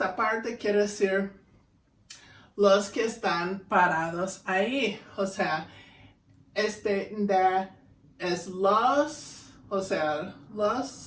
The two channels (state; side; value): identical; both; correlation 1.00